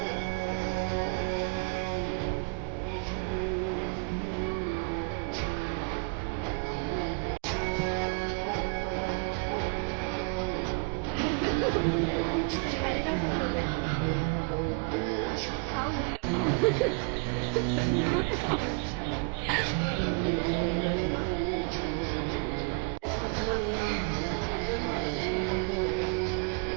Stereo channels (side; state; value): left; quieter; 34.5 dB